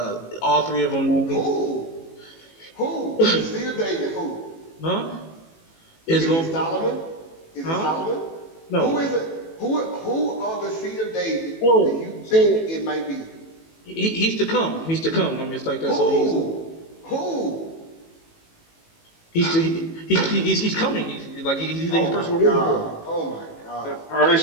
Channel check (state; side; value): late; right; 18 ms